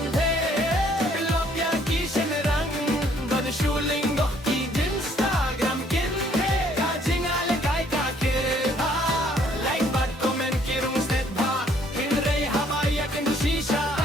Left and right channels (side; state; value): both; normal; correlation 0.63